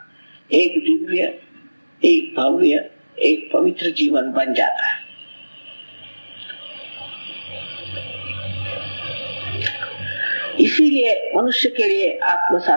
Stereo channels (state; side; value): inverted; both; correlation -1.00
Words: एक दिव्य, एक भव्य, एक पवित्र जीवन बन जाता है। इसीलिए मनुष्य के लिए आत्म